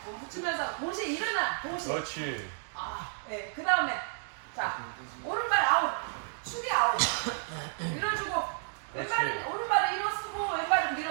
몸 붙이면서 동시에 일어나. 동시에. 그렇지. 아, 네. 그 다음에 자 오른발 아웃, 축이 아웃. 밀어주고 왼발은 오른발을 일어쓰고 왼발은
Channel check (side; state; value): left; silent; 57 dB below the other